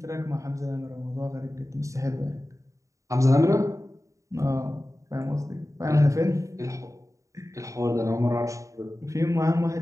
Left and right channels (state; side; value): late; left; 0.16 ms